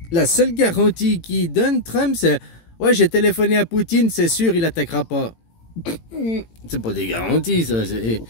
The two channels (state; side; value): late; right; 18 ms